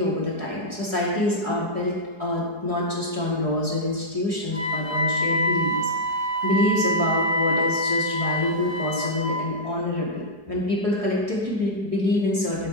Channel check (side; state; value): left; late; 4.7 ms